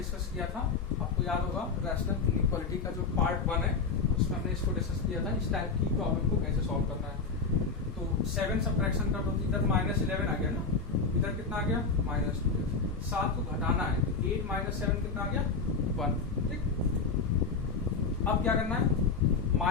किया था, आपको याद होगा, रैशनल इनइक्वालिटी का जो पार्ट 1 है उसमें हमने इसको डिस्कस किया था, इस टाइप की प्रॉब्लम को कैसे सॉल्व करना है। तो 7 सब्ट्रैक्शन कर दो, इधर -11 आ गया ना, इधर कितना आ गया -2, 7 को घटाना है, 8 माइनस 7 कितना आ गया 1, ठीक। अब क्या करना है,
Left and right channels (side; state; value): right; quieter; 4.8 dB